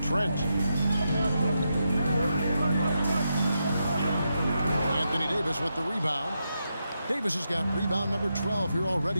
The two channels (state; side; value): inverted; both; correlation -0.85